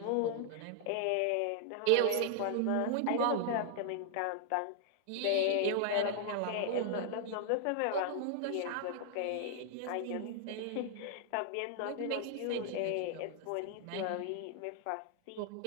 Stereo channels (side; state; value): both; different; correlation 0.00